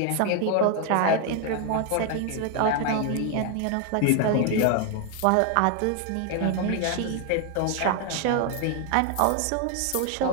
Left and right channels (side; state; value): both; different; correlation 0.00